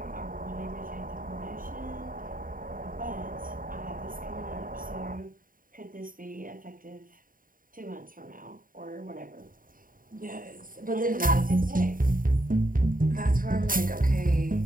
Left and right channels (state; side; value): late; left; 0.40 ms